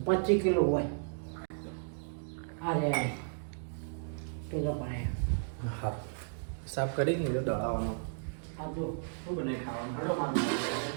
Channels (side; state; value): left; silent; digital silence